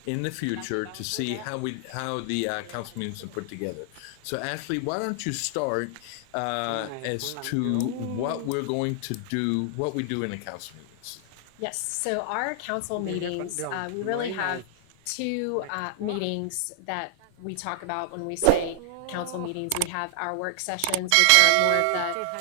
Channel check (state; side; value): different; both; correlation -0.01